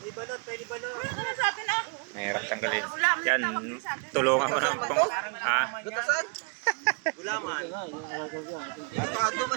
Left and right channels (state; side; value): quieter; left; 34.8 dB